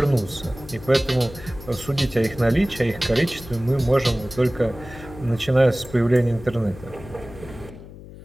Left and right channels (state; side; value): noise; left; hum, 16 dB below the sound